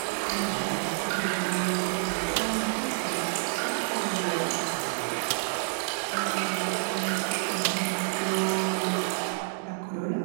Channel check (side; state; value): left; silent; digital silence